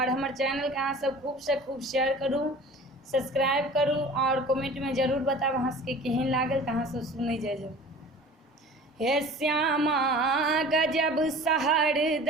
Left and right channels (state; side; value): normal; both; correlation 0.42